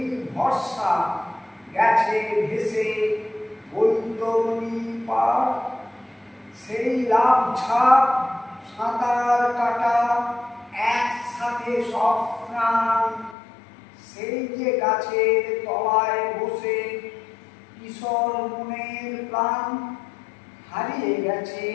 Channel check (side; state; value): right; drops out; at 13.4 s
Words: ভরসা গেছে ভেসে বৈতরণী পার। সেই লাভ ঝাঁপ সাঁতার কাটা একসাথে সব প্রাণ, সেই যে গাছের তলায় বসে কিশোর মনের প্রাণ। হারিয়ে গেছে